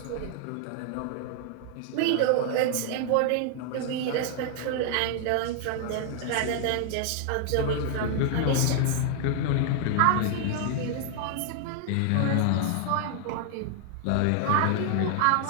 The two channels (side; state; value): both; different; correlation 0.00